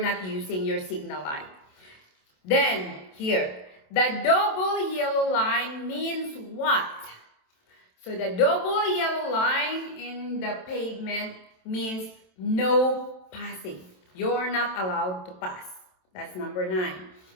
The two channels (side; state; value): right; late; 27 ms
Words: not using your signal light. Then here, the double yellow line means what? So the double yellow line in the pavement means no passing. You're not allowed to pass. That's number 9.